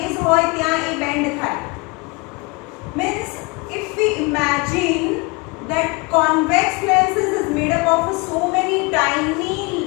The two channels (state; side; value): quieter; right; 27.6 dB